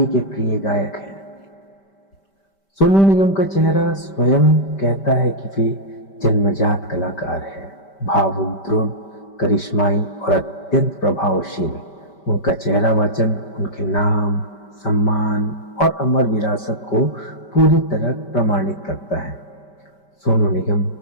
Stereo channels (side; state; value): right; late; 5.1 ms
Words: के प्रिय गायक हैं। सोनू निगम का चेहरा स्वयं कहता है कि वे जन्मजात कलाकार है। भावुक, दृढ़, करिश्माई और अत्यंत प्रभावशील। उनका चेहरा वाचन उनके नाम, सम्मान और अमर विरासत को पूरी तरह प्रमाणित करता है। सोनू निगम